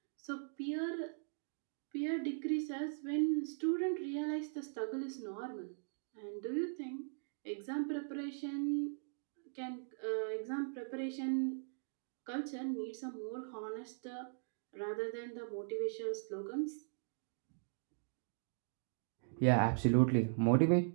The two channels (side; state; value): left; silent; digital silence